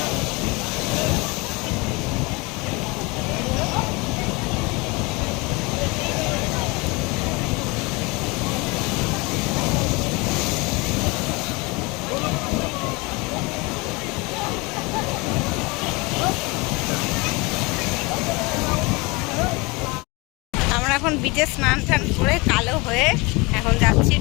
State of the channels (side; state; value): right; quieter; 26.0 dB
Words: এখন বিচে স্নান টান করে কালো হয়ে এখন যাচ্ছি